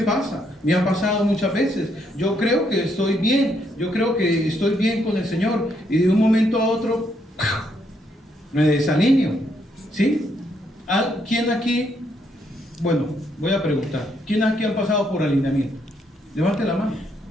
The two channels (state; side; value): normal; both; correlation 0.74